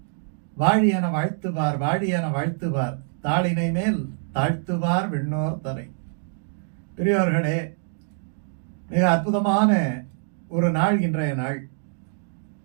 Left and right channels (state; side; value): silent; left; digital silence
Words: வாழி என வாழ்த்துவார் வாழி என வாழ்த்துவார் தாளினை மேல் தாழ்த்துவார் விண்ணோர் தரை. பெரியோர்களே, மிக அற்புதமான ஒரு நாள் இன்றைய நாள்.